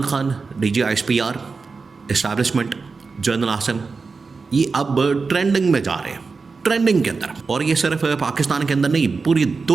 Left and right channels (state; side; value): quieter; left; 4.5 dB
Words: Khan, DGISPR, establishment, general आसन ये अब ट्रेंडिंग में जा रहे हैं, ट्रेंडिंग के अंदर। और ये सिर्फ पाकिस्तान के अंदर नहीं, पूरी